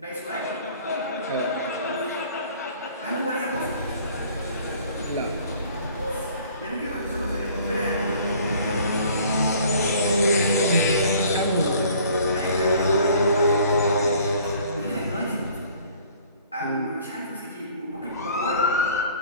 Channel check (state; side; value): inverted; both; correlation -0.54